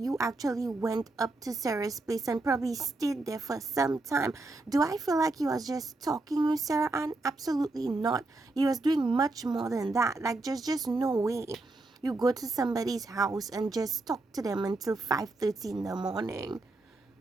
actually went up to Sarah's place and probably stayed there for some time. Do I feel like you was just talking with Sarah Ann? Absolutely not. You was doing much more than that. Like, just no way you go to somebody's house and just talk to them until 5:30 in the morning.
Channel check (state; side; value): quieter; left; 3.1 dB